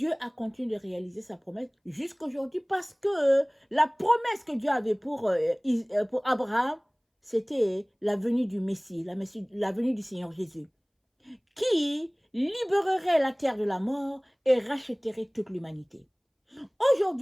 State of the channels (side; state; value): both; identical; correlation 1.00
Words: a continué de réaliser sa promesse jusqu'à aujourd'hui parce que la promesse que Dieu avait pour Abraham, c'était la venue du Messie, la venue du Seigneur Jésus, qui libérerait la terre de la mort et rachèterait toute l'humanité.